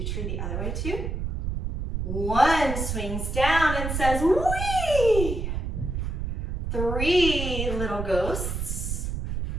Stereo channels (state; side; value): noise; right; rumble, 3 dB below the sound